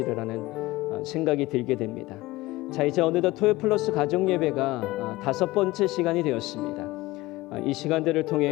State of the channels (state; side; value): quieter; right; 19.6 dB